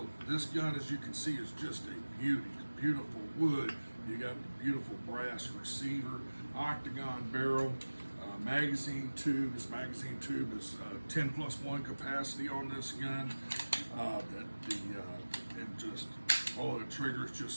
this gun, as you can see, is just a beauty. Beautiful wood. You got the beautiful brass receiver, octagon barrel, magazine tube. This magazine tube is 10+1 capacity on this gun. And just the trigger is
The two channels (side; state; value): both; inverted; correlation -1.00